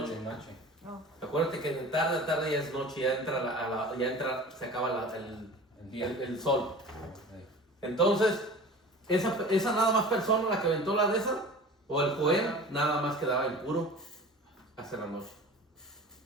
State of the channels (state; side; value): normal; both; correlation 0.39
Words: de noche. No. Acuérdate que de tarde a tarde ya es noche, ya entra, se acaba El día. el sol. Sí. Entonces, esa nada más persona, la que aventó la de esa, o el Joel, nada más quedaba impuro hasta la noche.